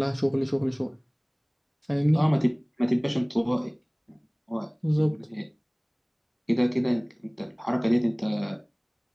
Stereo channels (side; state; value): both; identical; correlation 1.00